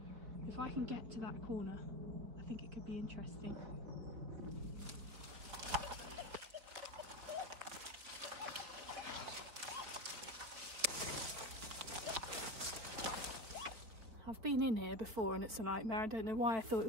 If I can get to that corner, I think it could be interesting. I've been in here before and it's a nightmare. I don't know why I thought it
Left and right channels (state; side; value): late; left; 4.3 ms